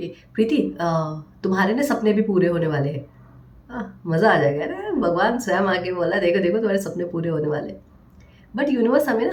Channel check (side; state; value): both; identical; correlation 1.00